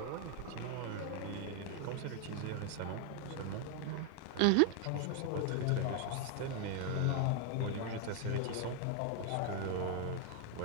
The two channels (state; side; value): different; both; correlation 0.00